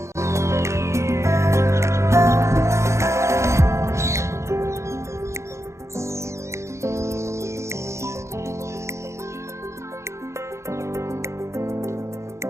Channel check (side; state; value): left; late; 0.14 ms